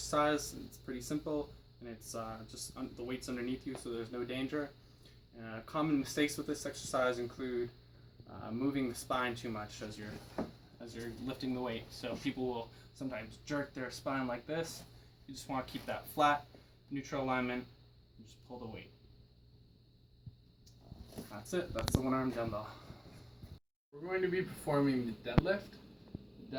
It's pretty simple, and it's just the weight's underneath you, so there's no danger. Common mistakes with this exercise include moving the spine too much as you're lifting the weight. So people will sometimes jerk their spine like this. You just want to keep that flat, neutral alignment, and just pull the weight. That's it. That's the one-arm dumbbell. We're going to be performing the deadlift. The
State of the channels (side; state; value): both; identical; correlation 1.00